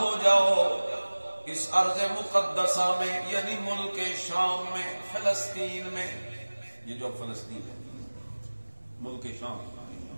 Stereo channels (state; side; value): inverted; both; correlation -1.00